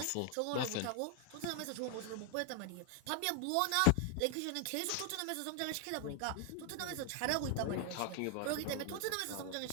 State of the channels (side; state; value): both; different; correlation 0.00